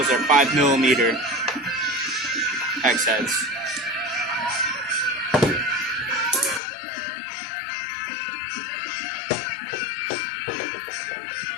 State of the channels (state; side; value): drops out; right; at 6.6 s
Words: are 5mm hex heads.